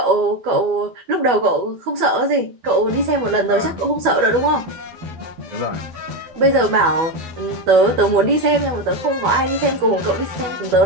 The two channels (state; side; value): late; left; 12 ms